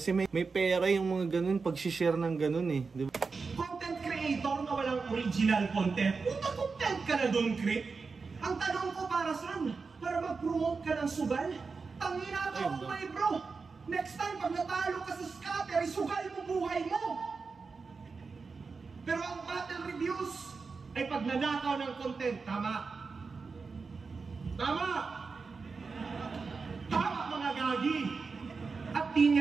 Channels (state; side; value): quieter; left; 4.7 dB